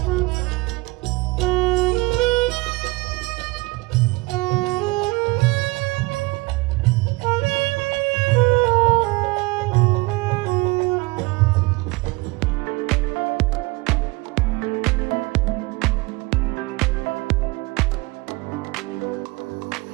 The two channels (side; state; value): left; quieter; 24.2 dB